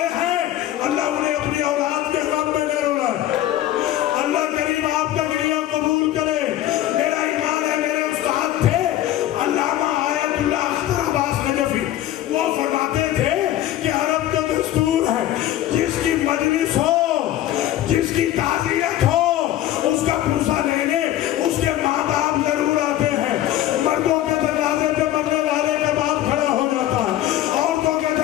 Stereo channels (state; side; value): quieter; right; 13.3 dB